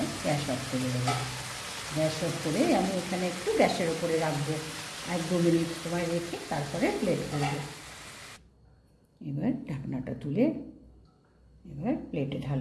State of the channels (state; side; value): identical; both; correlation 1.00